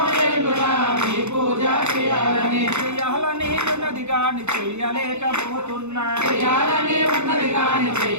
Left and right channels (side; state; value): left; late; 0.82 ms